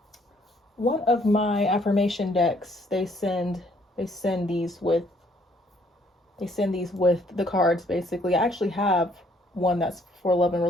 my affirmation decks. They send these with the cards, basically. I actually have one that's for love and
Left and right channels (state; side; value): normal; both; correlation 0.65